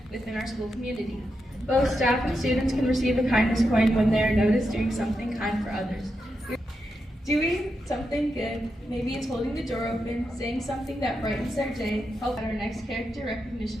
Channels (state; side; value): normal; both; correlation 0.86